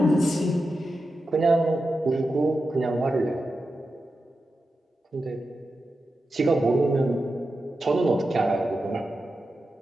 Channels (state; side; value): normal; both; correlation 0.90